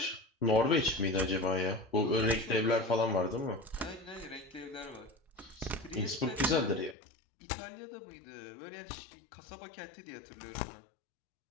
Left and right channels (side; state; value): right; drops out; at 7.0 s